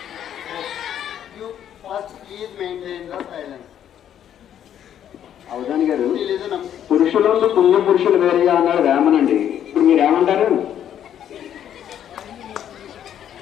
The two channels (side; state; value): right; quieter; 10.1 dB